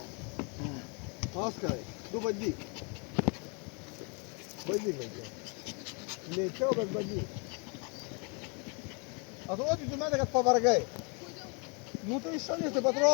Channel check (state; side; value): quieter; right; 34.3 dB